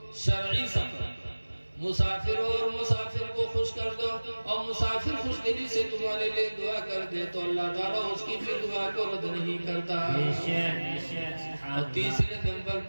شرعی سفر، مسافر ہو اور مسافر کو خوش کر دو، اور مسافر خوش دلی سے تمہارے لیے دعا کر دے تو اللہ تعالیٰ اس کی بھی دعا کو رد نہیں کرتا۔ بے شک بے شک سبحان اور اللہ۔ تیسرے نمبر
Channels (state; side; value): inverted; both; correlation -1.00